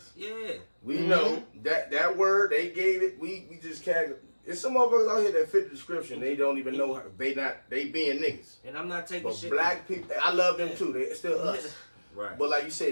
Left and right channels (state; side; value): inverted; both; correlation -1.00